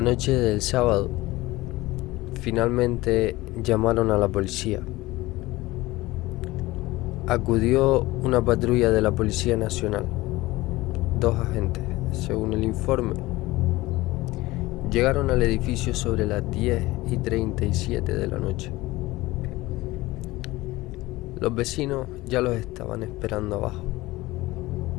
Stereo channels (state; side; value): quieter; right; 19.4 dB